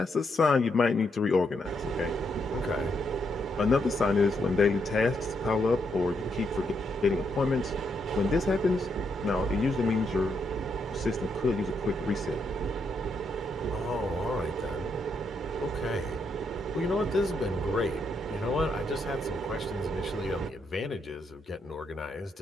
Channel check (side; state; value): both; normal; correlation 0.78